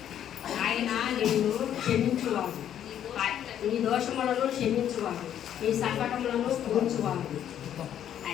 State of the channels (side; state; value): right; quieter; 10.2 dB